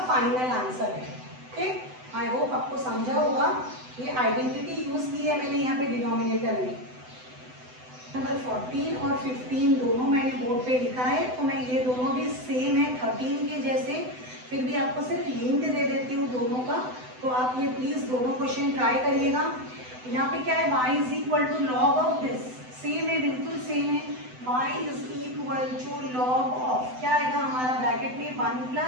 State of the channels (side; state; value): left; late; 7.9 ms